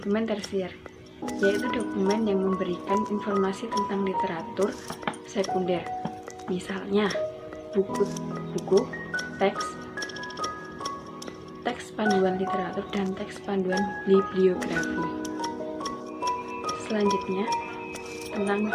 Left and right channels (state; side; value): identical; both; correlation 1.00